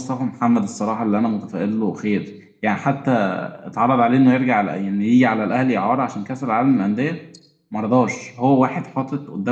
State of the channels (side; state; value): both; identical; correlation 1.00